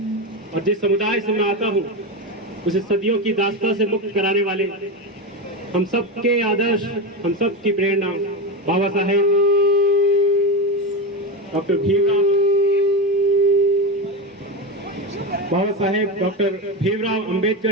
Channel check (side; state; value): both; normal; correlation 0.16